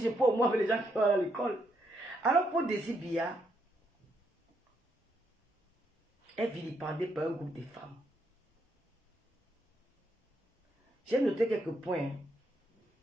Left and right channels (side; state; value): both; normal; correlation 0.76